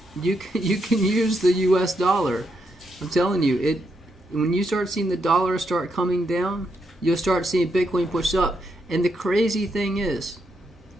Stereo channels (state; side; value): normal; both; correlation 0.80